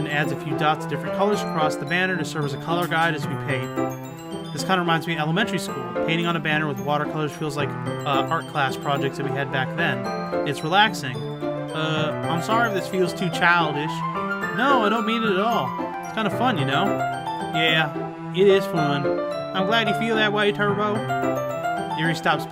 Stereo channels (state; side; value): identical; both; correlation 1.00